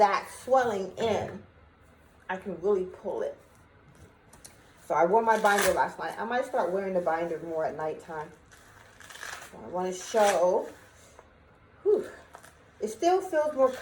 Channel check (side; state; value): both; identical; correlation 1.00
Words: swelling in. I can really pull it. So I wore my binder last night. I might start wearing the binder more at nighttime. So I want to show. Whew, it still feels more